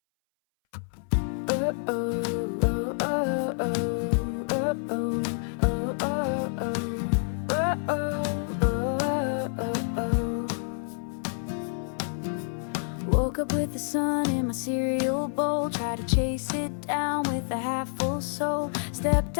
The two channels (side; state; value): right; silent; 59 dB below the other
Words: Woke up with the sun in my cereal bowl, tried to chase it down with a half-full soul. Stepped